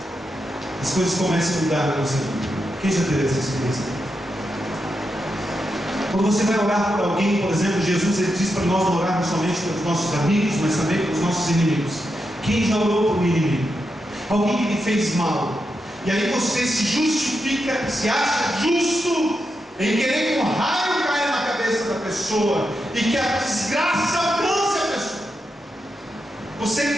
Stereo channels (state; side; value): normal; both; correlation 0.86